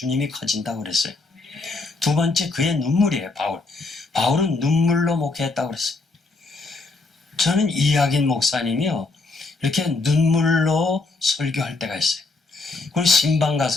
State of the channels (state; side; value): quieter; right; 3.5 dB